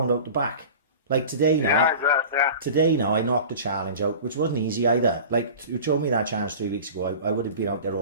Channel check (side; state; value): both; inverted; correlation -0.37